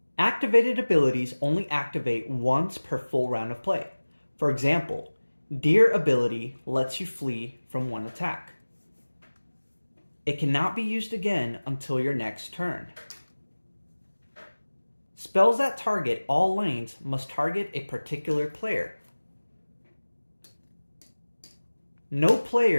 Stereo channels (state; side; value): inverted; both; correlation -1.00